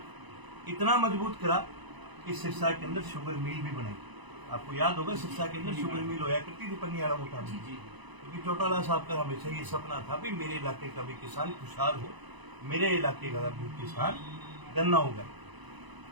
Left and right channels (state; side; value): late; left; 1.0 ms